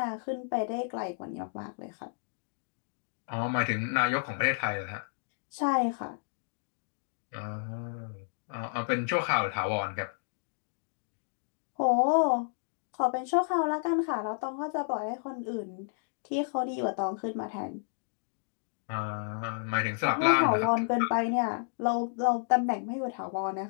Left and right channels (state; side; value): silent; right; digital silence